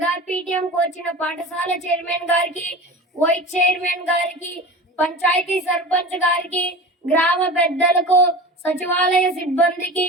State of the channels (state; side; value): normal; both; correlation 0.33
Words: పీటీఎం వచ్చిన పాఠశాల చైర్మన్ గారికి, వైస్ చైర్మన్ గారికి, పంచాయతీ సర్పంచ్ గారికి, గ్రామ పెద్దలకు, సచివాలయ సిబ్బందికి